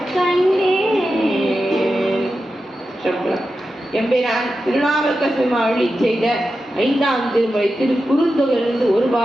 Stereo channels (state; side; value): normal; both; correlation 0.91